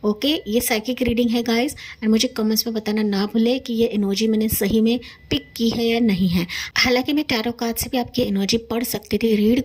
ओके, ये साइकिक रीडिंग है गाइस, एंड मुझे कमेंट्स में बताना ना भूले कि ये एनर्जी मैंने सही में पिक की है या नहीं है। हालांकि मैं टैरो कार्ड से भी आपकी एनर्जी पढ़ सकती थी, रीड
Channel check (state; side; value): identical; both; correlation 1.00